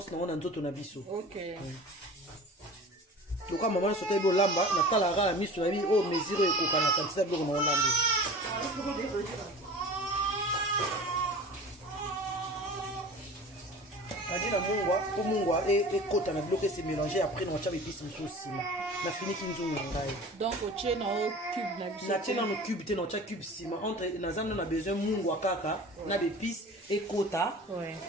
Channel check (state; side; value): normal; both; correlation 0.39